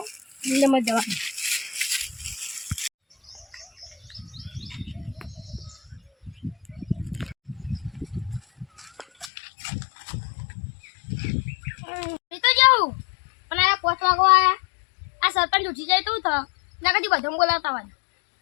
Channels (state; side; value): drops out; right; at 9.3 s